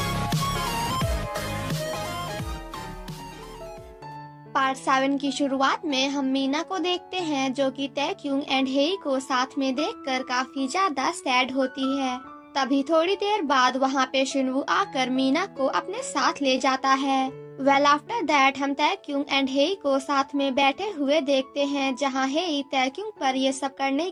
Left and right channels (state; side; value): identical; both; correlation 1.00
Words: 7 की शुरुआत में हम मीना को देखते हैं जो कि तैक्युंग एंड हेई को साथ में देखकर काफी ज्यादा सैड होती है। तभी थोड़ी देर बाद वहाँ पे शिनवू आकर मीना को अपने साथ ले जाता है। वेल आफ्टर दैट हम तैक्युंग एंड हेई को साथ में बैठे हुए देखते हैं जहाँ हेई तैक्युंग पर ये सब करने